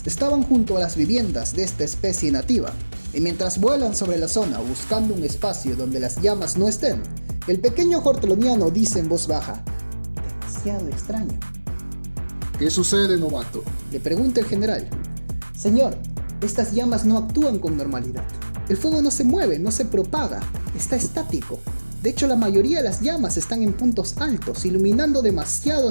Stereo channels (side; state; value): both; inverted; correlation -1.00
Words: estaban junto a las viviendas de esta especie nativa, y mientras vuelan sobre la zona buscando un espacio donde las llamas no estén, el pequeño horteloniano dice en voz baja: «Demasiado extraño». ¿Qué sucede, novato?, le pregunta el general. «Señor, estas llamas no actúan con normalidad. El fuego no se mueve, no se propaga, está estático. De hecho, la mayoría de las llamas están en puntos altos, iluminando demasiado a